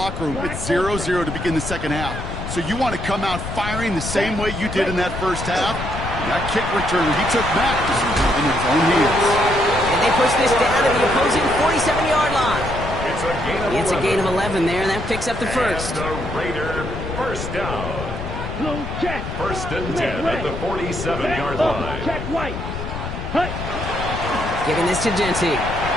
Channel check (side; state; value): left; noise; rumble, 7 dB below the sound